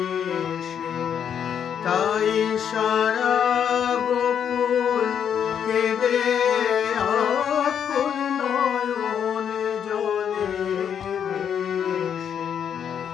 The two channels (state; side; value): quieter; right; 8.3 dB